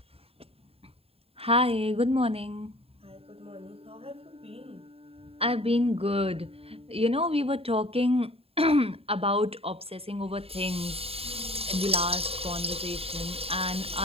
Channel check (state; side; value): late; left; 0.28 ms